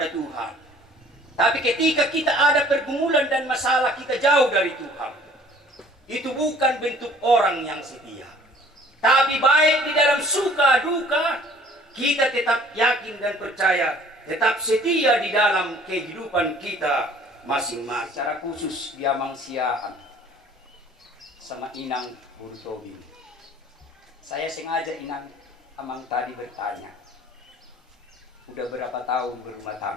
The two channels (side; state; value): both; normal; correlation 0.53